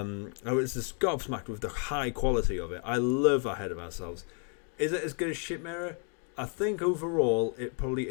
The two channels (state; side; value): quieter; right; 38.3 dB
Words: was just gobsmacked with the high quality of it. I love Ahead of Ourselves. Is it as good as Shit Mirror? I think overall it probably